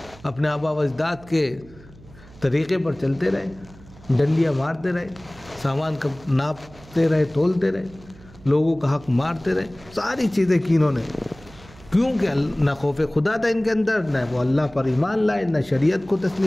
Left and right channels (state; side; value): noise; right; hum, 22 dB below the sound